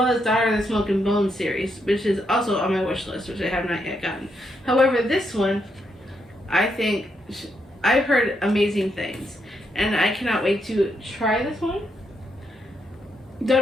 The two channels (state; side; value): normal; both; correlation 0.79